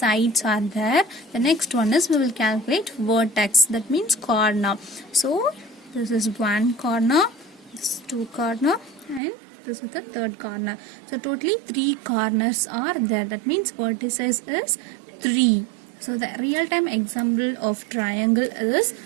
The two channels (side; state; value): left; drops out; at 9.2 s